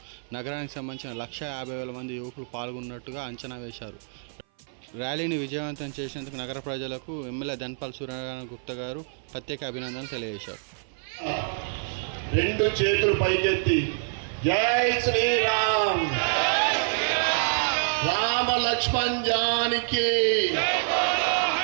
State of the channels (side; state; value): left; silent; 56 dB below the other